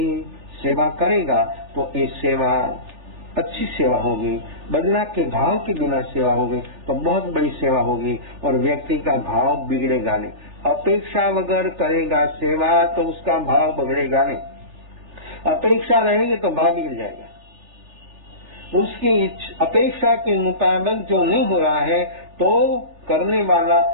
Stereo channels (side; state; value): left; late; 3.4 ms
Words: सेवा करेगा तो ये सेवा अच्छी सेवा होगी, बदला के भाव के बिना सेवा होगी तो बहुत बड़ी सेवा होगी और व्यक्ति का भाव बिगड़ेगा नहीं। अपेक्षा वगैर करेगा सेवा तो उसका भाव बिगड़ेगा नहीं, अपेक्षा रहेगी तो भाव बिगड़ जाएगा। उसकी अपेक्षा के मुताबिक जो नहीं हो रहा है तो करने वाला